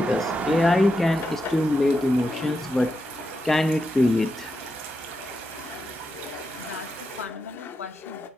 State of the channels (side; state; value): both; normal; correlation 0.87